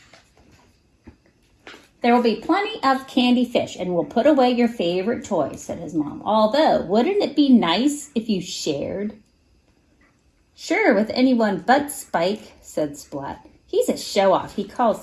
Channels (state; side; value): identical; both; correlation 1.00